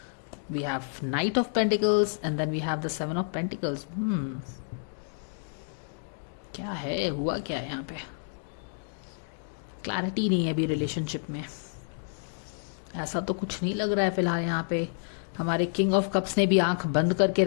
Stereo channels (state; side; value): silent; right; digital silence